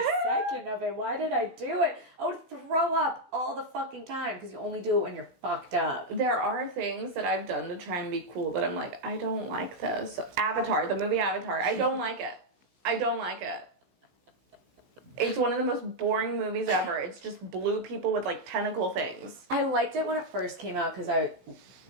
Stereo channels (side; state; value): left; late; 16 ms